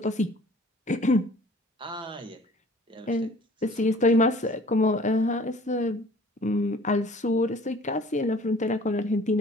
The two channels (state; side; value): normal; both; correlation 0.50